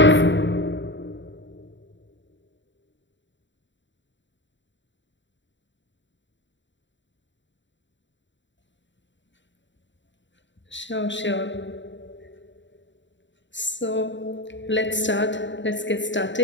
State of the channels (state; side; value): late; right; 0.54 ms